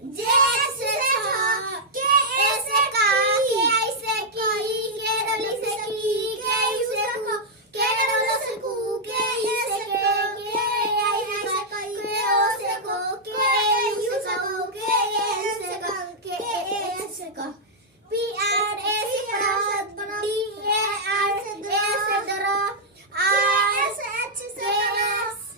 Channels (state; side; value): normal; both; correlation -0.06